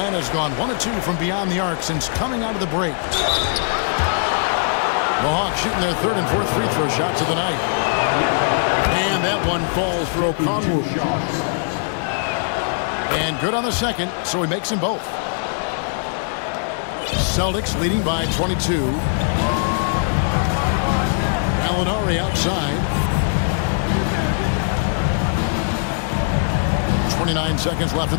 gone 1 of 2 from beyond the arc since coming out of the break. The Hawks shooting their third and fourth free throw shots of the night. And that one falls for Okongwu. And good on the second, so he makes them both. Celtics leading by 22. Gallinari outside. 29 seconds left in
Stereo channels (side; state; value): right; silent; digital silence